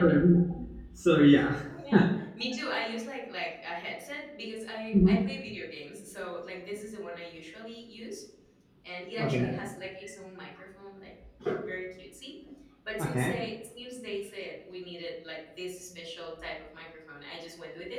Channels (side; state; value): both; identical; correlation 1.00